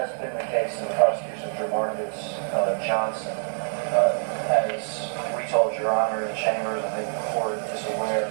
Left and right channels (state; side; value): silent; left; 61 dB below the other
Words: been the case in the prosecution of Jamarcus Johnson. As we told Your Honor in chambers, I think the court is aware,